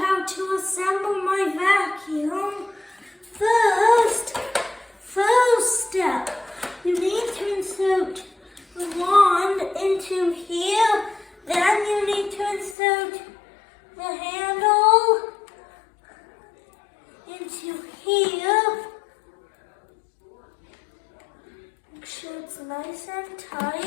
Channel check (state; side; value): drops out; right; at 12.8 s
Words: how to assemble my vacuum. First step, you need to insert the wand into here. Then you need to insert the handle into here. Make sure it's nice and